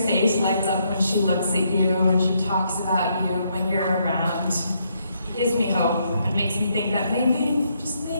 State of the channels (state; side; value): inverted; both; correlation -0.75